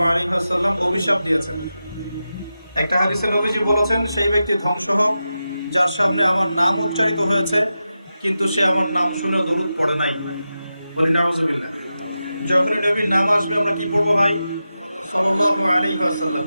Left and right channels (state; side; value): inverted; both; correlation -0.91